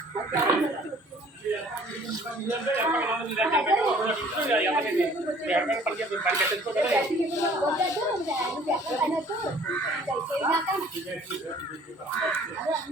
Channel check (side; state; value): both; normal; correlation 0.54